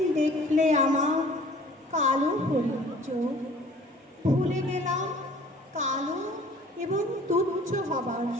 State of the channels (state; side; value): normal; both; correlation 0.51